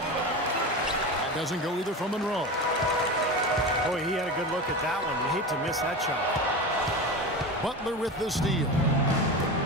doesn't go either from Monroe. Boy, he had a good look at that one. You hate to miss that shot. Butler with the steal.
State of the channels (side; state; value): both; normal; correlation 0.26